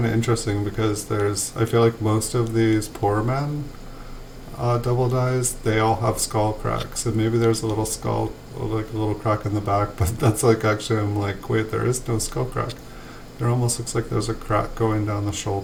of interesting because I feel like most of these poor men double dies, they all have skull cracks, and maybe there's a little skull, like a little crack in the back, but that's like actually, I'm like, wait, there is no skull crack. There almost looks like there's a crack going down the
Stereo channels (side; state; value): both; identical; correlation 1.00